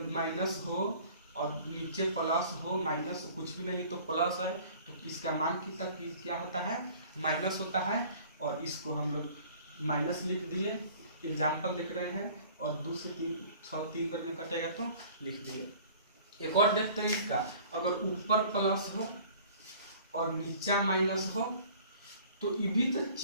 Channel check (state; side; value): inverted; both; correlation -0.49